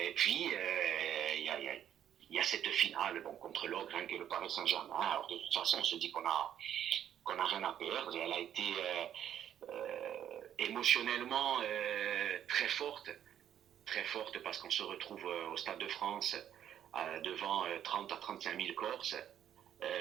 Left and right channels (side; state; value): left; quieter; 10.2 dB